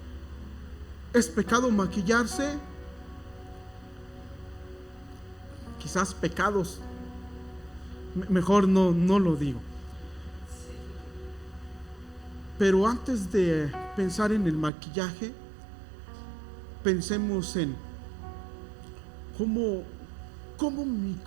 ¿Es pecado maquillarse? quizás pecados. Mejor no lo digo. Pero antes de pensar en el maquillaje, pensemos en cómo mi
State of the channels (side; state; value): left; drops out; at 14.7 s